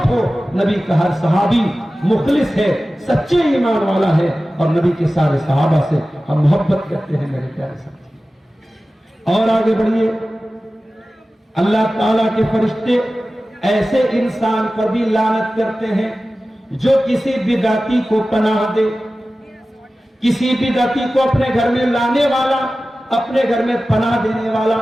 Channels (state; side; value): normal; both; correlation 0.95